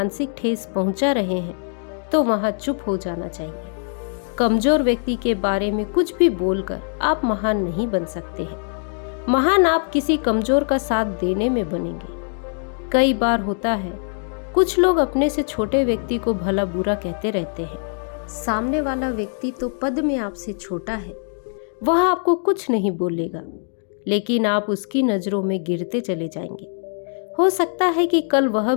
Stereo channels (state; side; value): silent; right; digital silence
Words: ठेस पहुंचा रहे हैं तो वहां चुप हो जाना चाहिए। कमजोर व्यक्ति के बारे में कुछ भी बोलकर आप महान नहीं बन सकते हैं। महान आप किसी कमजोर का साथ देने में बनेंगे। कई बार होता है कुछ लोग अपने से छोटे व्यक्ति को भला बुरा कहते रहते हैं। सामने वाला व्यक्ति तो पद में आपसे छोटा है, वह आपको कुछ नहीं बोलेगा, लेकिन आप उसकी नजरों में गिरते चले जाएंगे। हो सकता है कि कल वह